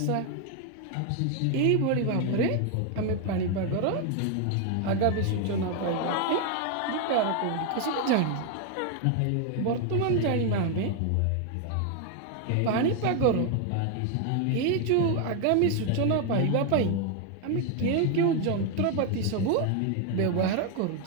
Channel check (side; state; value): both; different; correlation 0.01